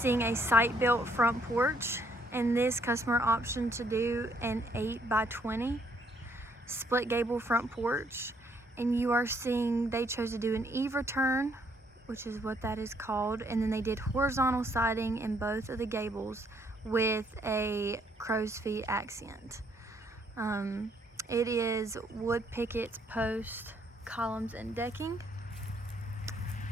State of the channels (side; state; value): both; normal; correlation 0.68